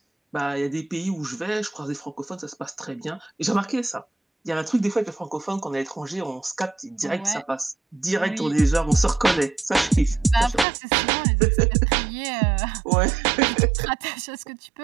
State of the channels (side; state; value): left; drops out; at 10.7 s